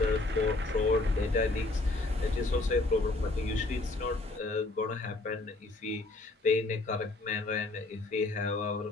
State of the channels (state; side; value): quieter; right; 3.1 dB